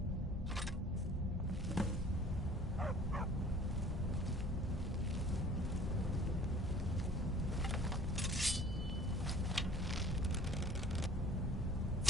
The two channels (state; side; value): normal; both; correlation 0.50